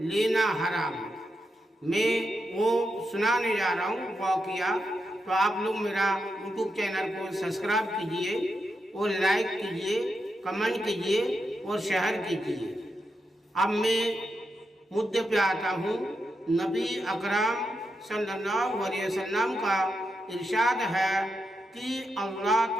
حرام، میں وہ سنانے جا رہا ہوں واقعہ۔ تو آپ لوگ میرا یوٹیوب چینل کو سبسکرائب کیجئے اور لائک کیجئے، کمنٹ کیجئے اور شیئر کیجئے۔ اب میں مدعے پہ آتا ہوں۔ نبی اکرم صلی اللہ علیہ وسلم کا ارشاد ہے کہ اللہ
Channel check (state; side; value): normal; both; correlation 0.85